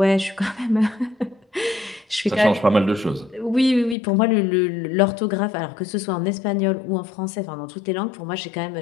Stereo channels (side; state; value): right; drops out; at 4.0 s